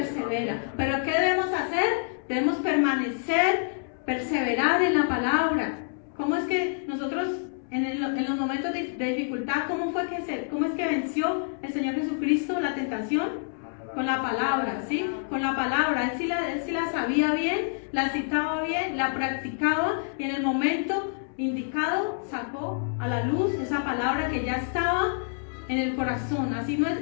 Pero ¿qué debemos hacer? Debemos perseverar en la palabra. ¿Cómo es que nosotros en los momentos de dificultad, cómo es que venció el Señor Jesucristo la tentación? Con la palabra, ¿sí? Con la palabra. Él sí la sabía bien, la citaba bien, la practicaba y en el momento indicado sacó a la luz esa palabra que ya estaba en el corazón. Así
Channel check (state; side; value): silent; right; 60 dB below the other